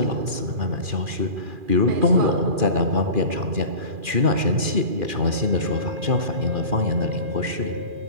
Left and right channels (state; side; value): late; left; 2.4 ms